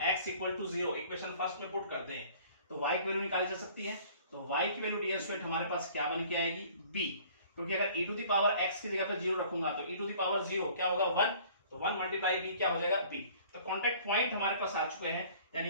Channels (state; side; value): inverted; both; correlation -0.52